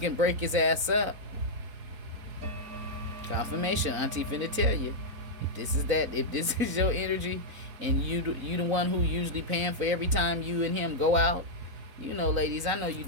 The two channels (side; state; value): left; late; 4.0 ms